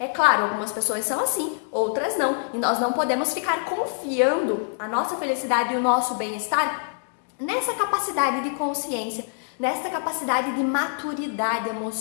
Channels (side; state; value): right; silent; digital silence